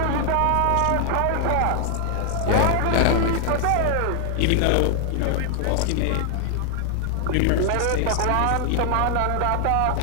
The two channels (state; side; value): different; both; correlation 0.00